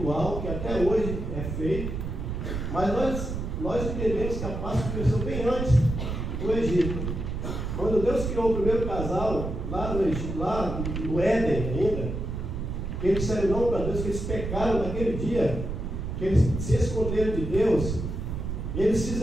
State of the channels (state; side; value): noise; right; rumble, 4 dB below the sound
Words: que até hoje é feito, mas nós entendemos que a Páscoa começou bem antes do Egito. Quando Deus criou o primeiro casal, lá no Egito, lá no Éden ainda, que eles disseram não para Deus, que eles pecaram naquele dia, que eles se esconderam de Deus, eles